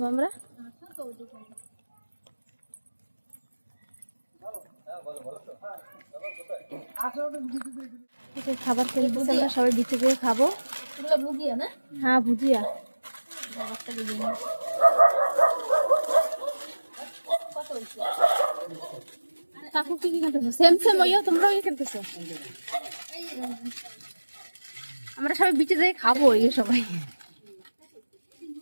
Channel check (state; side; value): inverted; both; correlation -1.00